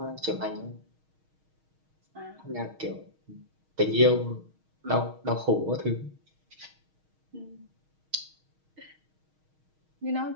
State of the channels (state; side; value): late; left; 6.4 ms